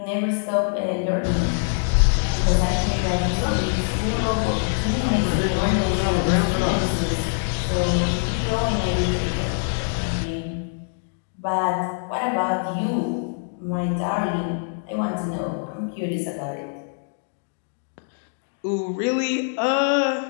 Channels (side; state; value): right; silent; digital silence